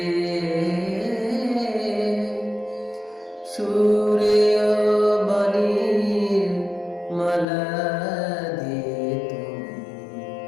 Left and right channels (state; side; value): drops out; right; at 7.5 s